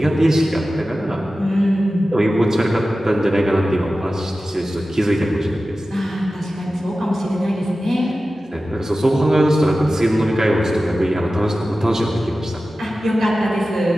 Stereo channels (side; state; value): both; normal; correlation 0.95